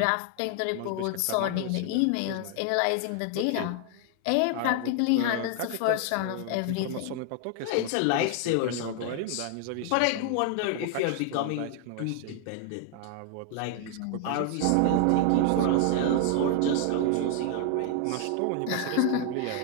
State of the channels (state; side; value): different; both; correlation 0.00